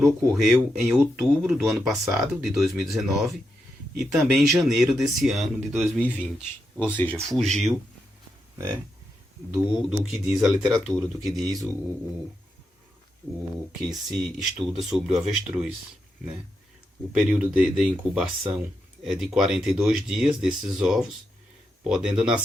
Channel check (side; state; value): both; normal; correlation 0.84